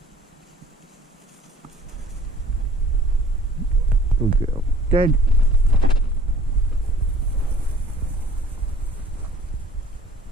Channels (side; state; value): both; normal; correlation 0.50